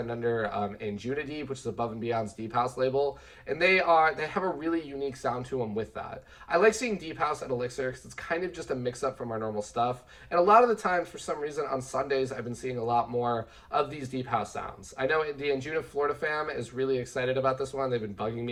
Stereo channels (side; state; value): both; identical; correlation 1.00